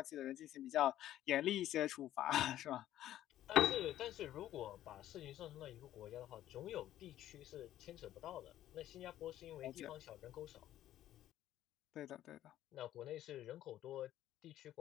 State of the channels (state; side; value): quieter; right; 12.9 dB